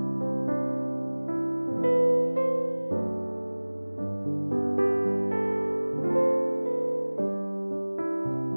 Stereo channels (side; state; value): both; inverted; correlation -1.00